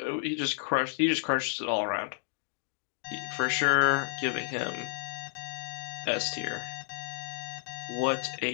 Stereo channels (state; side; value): silent; right; digital silence